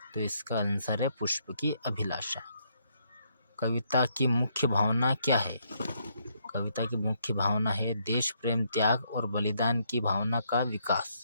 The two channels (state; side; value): inverted; both; correlation -0.73